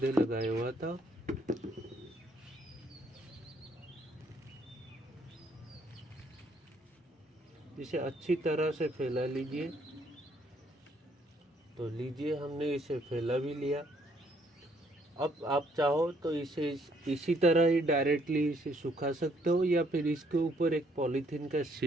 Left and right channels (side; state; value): both; normal; correlation 0.67